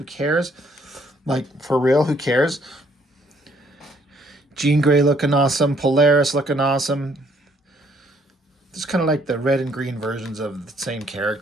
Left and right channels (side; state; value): both; normal; correlation 0.66